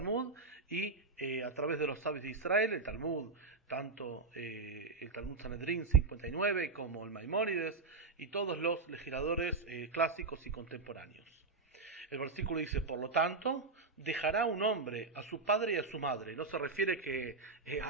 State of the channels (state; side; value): quieter; left; 4.0 dB